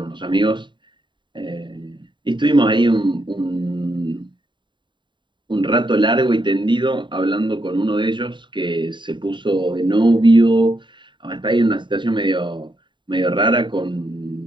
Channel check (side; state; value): left; late; 0.23 ms